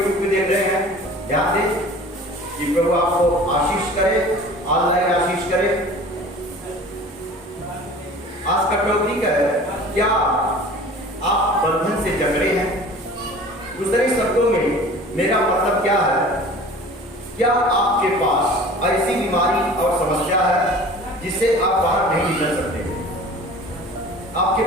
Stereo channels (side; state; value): both; normal; correlation 0.43